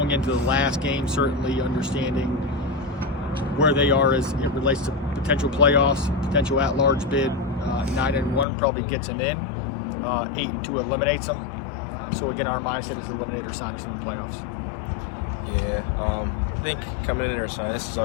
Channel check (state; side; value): drops out; right; at 8.5 s